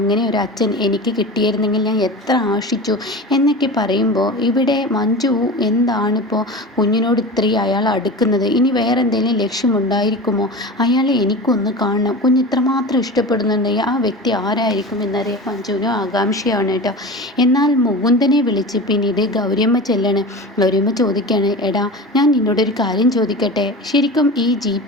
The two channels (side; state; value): both; normal; correlation 0.31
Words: ഒരു അച്ഛൻ എനിക്ക് കിട്ടിയിരുന്നെങ്കിൽ ഞാൻ എത്ര ആശിച്ചു എന്നൊക്കെ പറയുമ്പോൾ ഇവിടെ മഞ്ജു എന്താണിപ്പോൾ കുഞ്ഞിനോട് ഇത്രയും അയാൾ അടുക്കുന്നത്, ഇനി വേറെ എന്തെങ്കിലും ലക്ഷ്യമുണ്ടായിരിക്കുമോ, അയാളെ എനിക്കൊന്ന് കാണണം, കുഞ്ഞ് ഇത്രമാത്രം ഇഷ്ടപ്പെടുന്നുണ്ടെങ്കിൽ ആ വ്യക്തി ആരായിരിക്കും എന്നറിയാൻ മഞ്ജുവിനും ആകാംക്ഷയാണ് കേട്ടോ. എന്നാൽ മുകുന്ദനെ വിളിച്ച് പിന്നീട് ഗൗരിയമ്മ ചെല്ലാണ്. ഗൗരിയമ്മ ചോദിക്കുകയാണ്, എടാ ഞാൻ നിന്നോടൊരു കാര്യം ചോദിക്കട്ടെ, ശരിക്കും ഈ